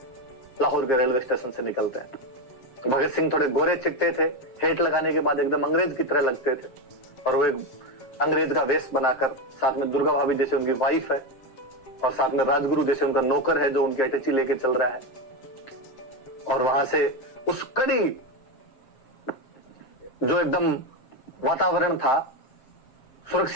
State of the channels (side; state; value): right; late; 7.5 ms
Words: लाहौर के रेलवे स्टेशन से निकलते हैं। भगत सिंह थोड़े गोरे चिट्टे थे, हेट लगाने के बाद एकदम अंग्रेज की तरह लगते थे, और वो एक अंग्रेज का वेश बनाकर, साथ में दुर्गा भाभी जैसे उनकी वाइफ है और साथ में राजगुरु जैसे उनका नौकर है जो उनकी अटैची लेके चल रहा है। और वहां से उस कड़ी जो एकदम वातावरण था,